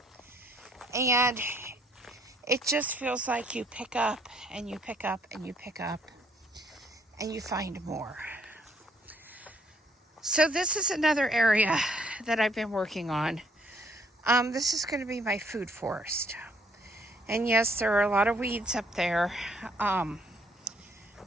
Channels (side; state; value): both; normal; correlation 0.65